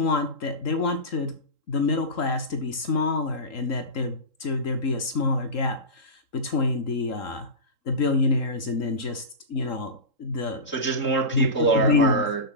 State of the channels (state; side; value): late; right; 3.8 ms